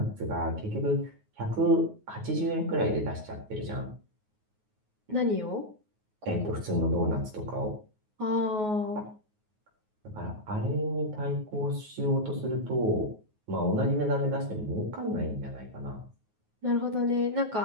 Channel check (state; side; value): late; left; 9.4 ms